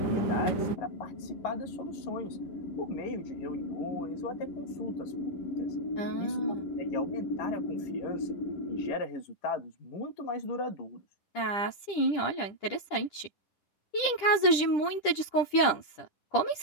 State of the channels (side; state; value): right; late; 10 ms